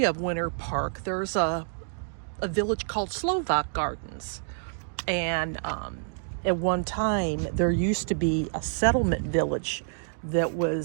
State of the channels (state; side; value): silent; left; digital silence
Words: of Winter Park, there's a village called Slovak Gardens, and at one time there used to be a settlement village that